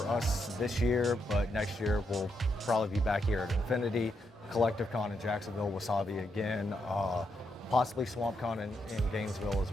us this year, but next year we'll probably be back here at Infinity, Collective Con in Jacksonville, Wasabi again, possibly Swamp Con in Gainesville as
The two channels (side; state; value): both; normal; correlation 0.81